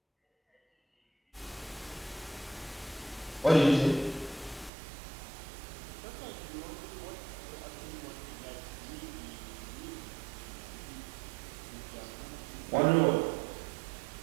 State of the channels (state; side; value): drops out; left; at 4.7 s